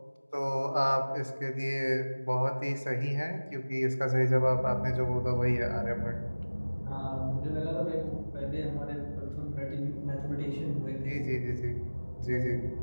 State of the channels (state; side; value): inverted; both; correlation -1.00